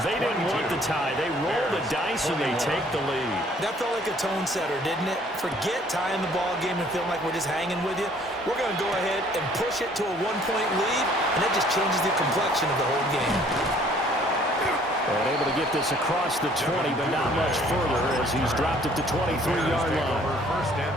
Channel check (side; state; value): both; normal; correlation 0.58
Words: didn't want the tie. They roll the dice and they take the lead. That felt like a tone setter, didn't it? Forget tying the ball game and feeling like we're just hanging with you. We're going to go ahead and push it to a 1-point lead, and that just changes the complexion of the whole game. And able to get this across the 20, but not much further as he's dropped it to 23-yard line. First and